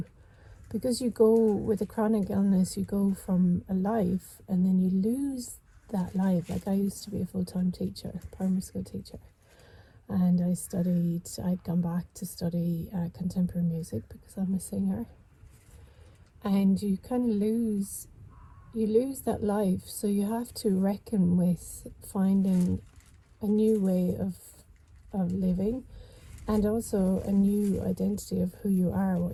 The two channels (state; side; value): identical; both; correlation 1.00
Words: because you go with a chronic illness, you go from a life and then you lose that life. Like I used to be a full-time teacher, primary school teacher, and I'd gone back to study contemporary music because I'm a singer. And you kind of lose that life, so you have to reckon with finding a new way of living, and also a new identity of who you are,